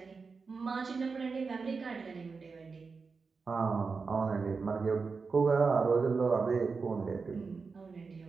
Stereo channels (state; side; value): quieter; left; 4.7 dB